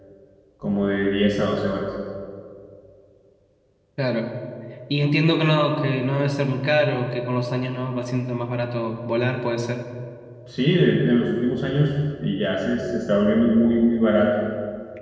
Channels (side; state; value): both; identical; correlation 1.00